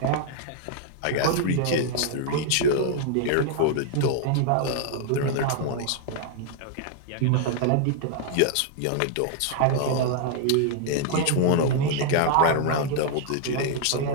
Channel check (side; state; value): both; different; correlation 0.00